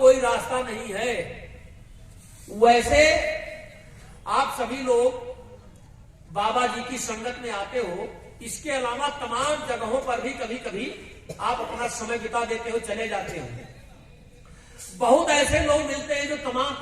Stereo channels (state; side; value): identical; both; correlation 1.00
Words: रास्ता नहीं है। वैसे आप सभी लोग बाबा जी की संगत में आते हो, इसके अलावा तमाम जगहों पर भी कभी कभी आप अपना समय बिता देते हो, चले जाते हो। बहुत ऐसे लोग मिलते हैं जो तमाम